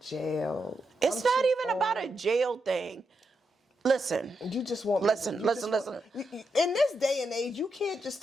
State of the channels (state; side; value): normal; both; correlation 0.84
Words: It's I'm not too even about a old. jail thing. Listen. You just want Listen. In this day and age, you can't just